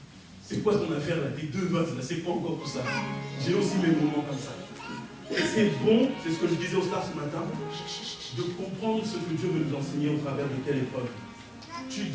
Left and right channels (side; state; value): both; identical; correlation 1.00